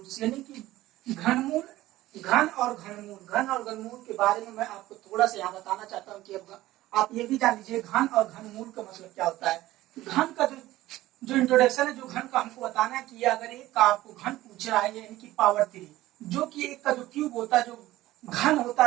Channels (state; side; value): quieter; left; 16.3 dB